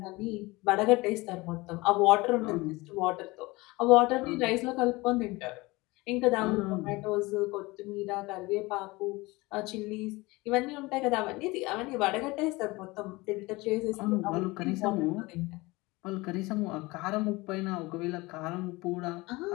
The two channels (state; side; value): quieter; right; 22.4 dB